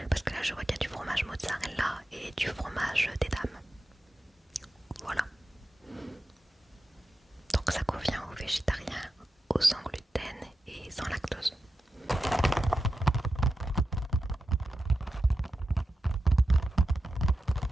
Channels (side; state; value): both; normal; correlation 0.90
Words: Parce que là je vois qu'il y a du fromage mozzarella et du fromage des dames. Voilà. Donc ça convient aux végétariens, aux sans gluten et sans lactose.